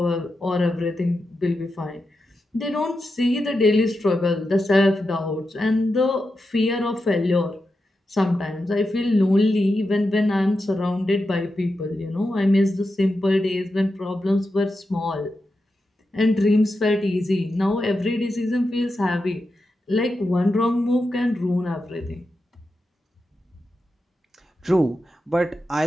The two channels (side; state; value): both; normal; correlation 0.89